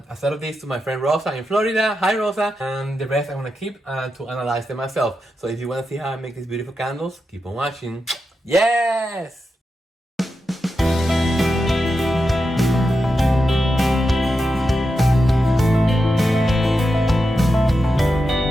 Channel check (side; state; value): both; normal; correlation 0.88